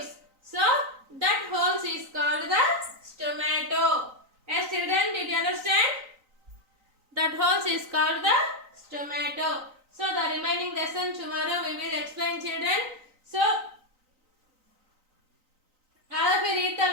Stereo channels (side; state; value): left; late; 3.9 ms